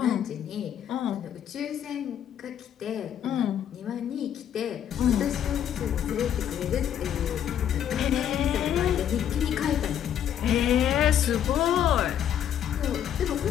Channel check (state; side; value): quieter; right; 9.8 dB